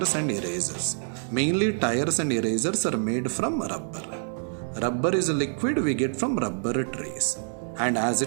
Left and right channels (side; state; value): left; silent; 61 dB below the other